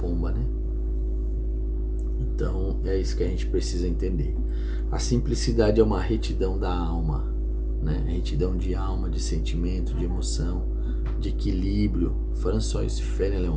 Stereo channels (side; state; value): both; identical; correlation 1.00